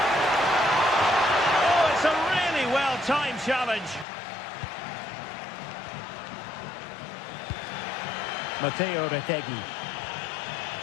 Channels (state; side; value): drops out; right; at 4.0 s